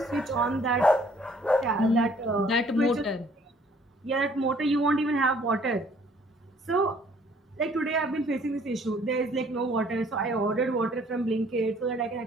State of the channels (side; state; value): both; normal; correlation 0.59